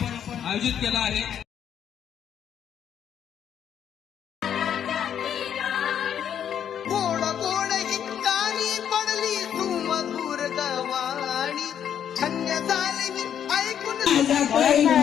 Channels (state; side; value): quieter; right; 9.1 dB